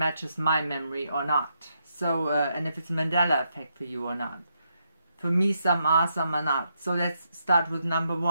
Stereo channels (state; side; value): inverted; both; correlation -0.80